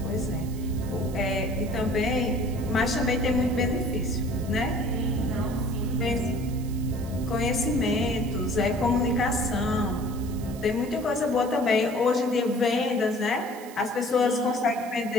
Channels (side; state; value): right; noise; hiss, 19 dB below the sound